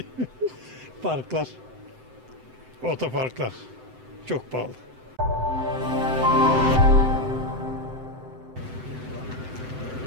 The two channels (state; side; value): late; left; 7.8 ms